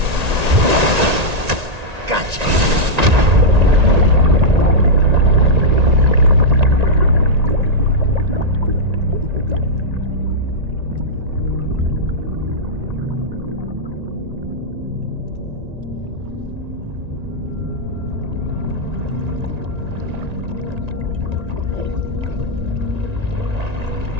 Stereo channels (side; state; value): left; late; 1.9 ms